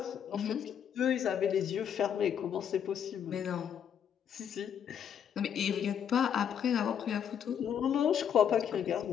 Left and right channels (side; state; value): right; quieter; 8.5 dB